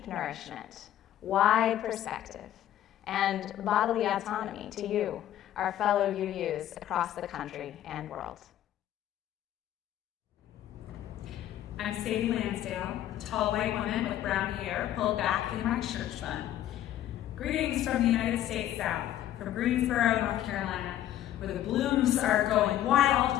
nourishment, wide perspective, and bodily autonomy to you, our fellow UUs across the country and world. I'm Sadie Lansdale, a tall white woman with brown hair pulled back in my church bun. Greetings from the United States South, from Greensboro, North Carolina, where the blooms are going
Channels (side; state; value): right; quieter; 12.3 dB